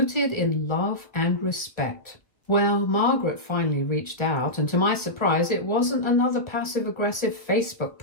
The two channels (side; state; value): right; late; 1.1 ms